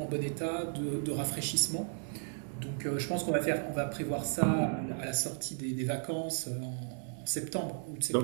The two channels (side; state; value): left; silent; 55 dB below the other